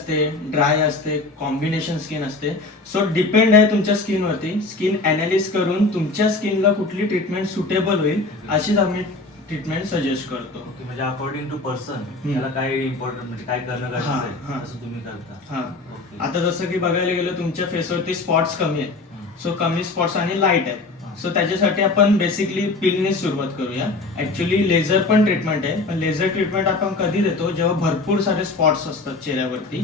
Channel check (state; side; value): quieter; right; 3.4 dB